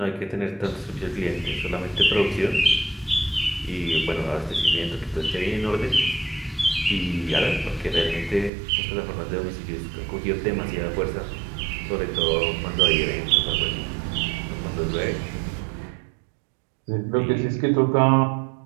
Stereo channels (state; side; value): drops out; left; at 8.5 s